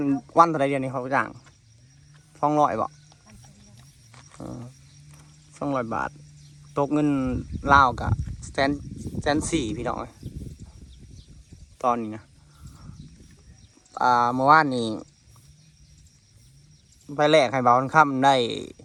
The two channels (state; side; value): identical; both; correlation 1.00